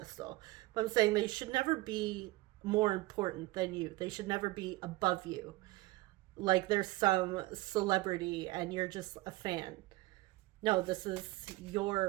But I'm saying they should never be more important than you. They should never be above you. Like there's some celebrity and you're just a fan. No, this is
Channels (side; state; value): left; quieter; 20.3 dB